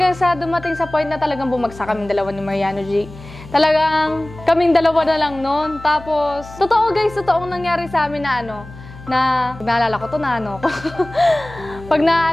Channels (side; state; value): left; noise; hum, 17 dB below the sound